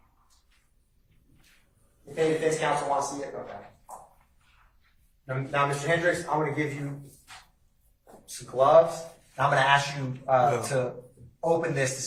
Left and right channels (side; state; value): both; identical; correlation 1.00